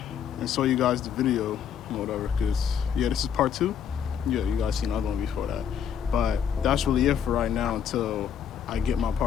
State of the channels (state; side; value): quieter; right; 8.2 dB